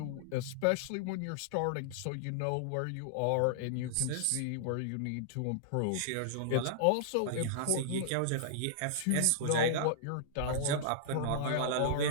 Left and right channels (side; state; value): both; different; correlation -0.01